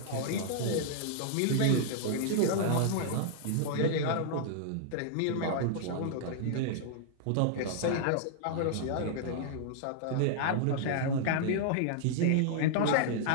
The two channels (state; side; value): different; both; correlation -0.01